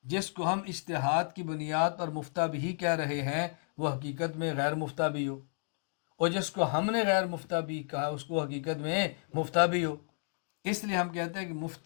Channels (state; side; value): silent; right; 56 dB below the other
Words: جس کو ہم اجتہاد کی بنیاد پر مفتہ بھی کہہ رہے ہیں وہ حقیقت میں غیر مفتہ بھی ہو، اور جس کو ہم نے غیر مفتہ بھی کہا اس کو حقیقت میں مفتہ بھی ہو۔ اس لیے ہم کہتے ہیں کہ